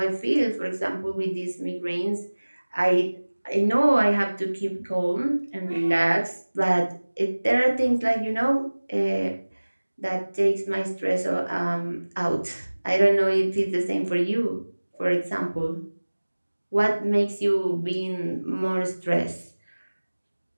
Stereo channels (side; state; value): both; inverted; correlation -1.00